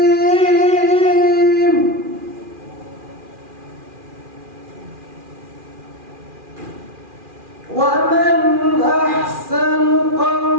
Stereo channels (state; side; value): late; left; 2.4 ms